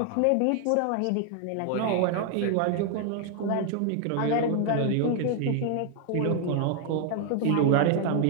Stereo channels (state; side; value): different; both; correlation 0.00